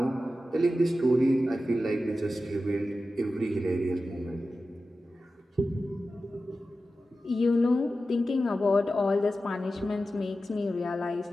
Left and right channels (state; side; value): normal; both; correlation 0.93